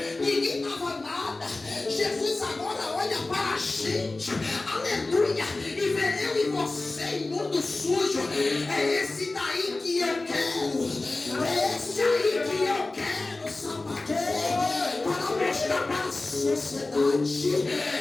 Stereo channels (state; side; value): quieter; right; 3.2 dB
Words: ninguém dava nada. Jesus agora olha para a gente, aleluia, e vê eu e você imundo, sujo. É esse daí que eu quero, é esse aí que eu quero, sapateiro, para mostrar para a sociedade